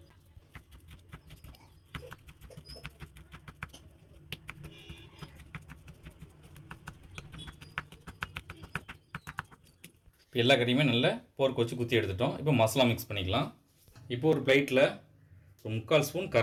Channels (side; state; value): both; identical; correlation 1.00